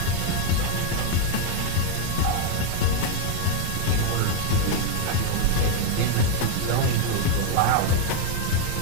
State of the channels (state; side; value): different; both; correlation 0.00